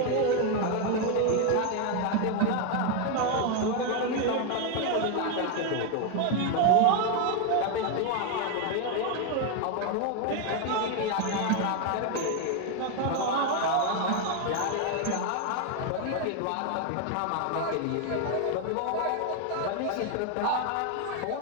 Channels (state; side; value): different; both; correlation 0.01